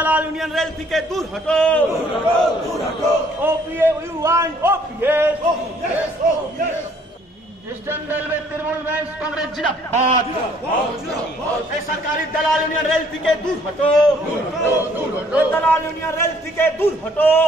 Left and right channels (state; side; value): normal; both; correlation 0.62